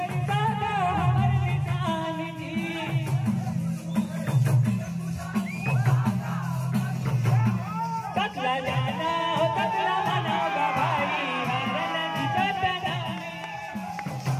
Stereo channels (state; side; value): identical; both; correlation 1.00